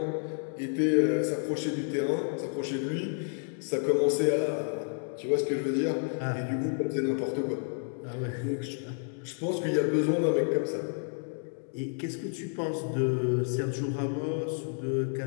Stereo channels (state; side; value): silent; right; 58 dB below the other